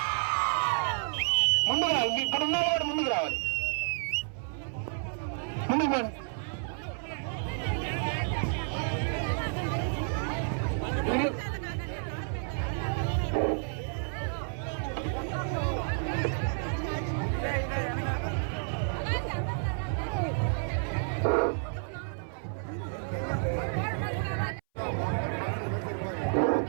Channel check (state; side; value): silent; left; 57 dB below the other